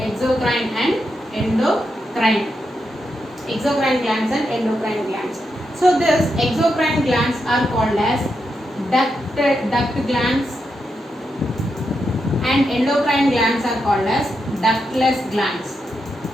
and endocrine, exocrine glands and endocrine glands. So this exocrine glands are called as duct glands, and endocrine glands are called as ductless glands,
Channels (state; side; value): normal; both; correlation 0.85